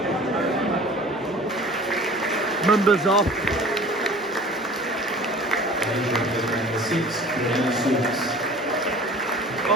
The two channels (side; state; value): both; normal; correlation 0.45